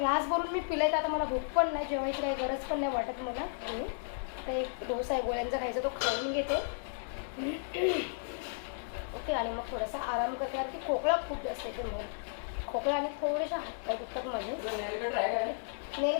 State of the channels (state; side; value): silent; right; digital silence